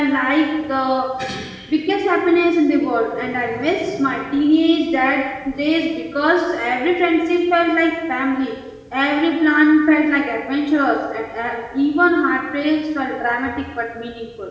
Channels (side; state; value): both; identical; correlation 1.00